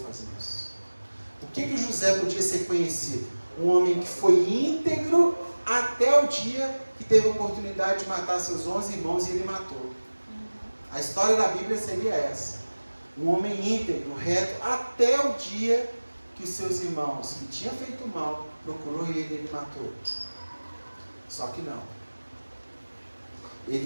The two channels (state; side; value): inverted; both; correlation -1.00